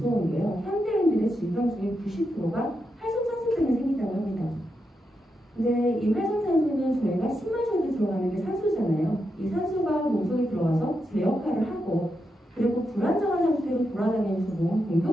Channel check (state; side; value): normal; both; correlation 0.85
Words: 게요. 현대인들의 질병 중에 90%가 활성산소 때문에 생긴다고 합니다. 근데 이 활성산소는 저희가 숨 마셔도 들어가는 게 산소잖아요. 이 산소가 몸속에 들어와서 제 역할을 하고 그리고 불안정한 상태로 돌아다니면서 몸을